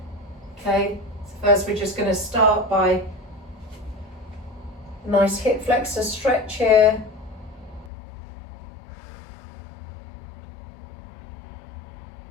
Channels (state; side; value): drops out; right; at 7.9 s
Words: Okay, so first we're just going to start by a nice hip flexor stretch here.